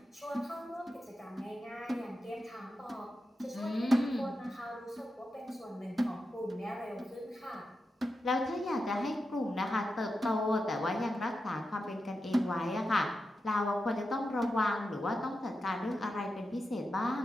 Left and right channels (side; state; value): both; normal; correlation 0.89